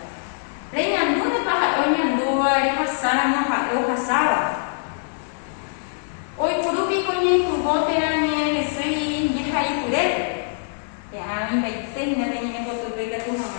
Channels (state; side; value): silent; right; digital silence